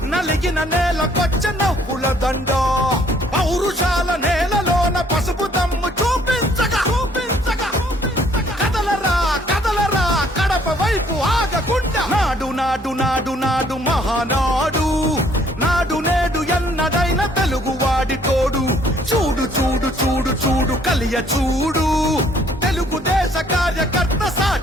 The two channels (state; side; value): normal; both; correlation 0.62